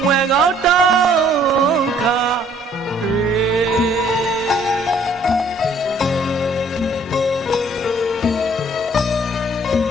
မွယ်ကောင်းတောင်းခါ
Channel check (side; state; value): both; normal; correlation 0.60